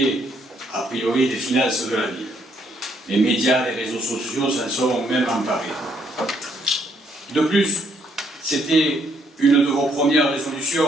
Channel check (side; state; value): both; normal; correlation 0.71